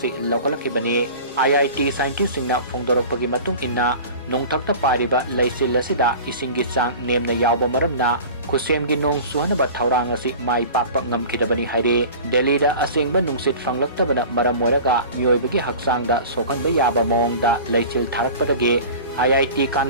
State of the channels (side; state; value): both; inverted; correlation -0.38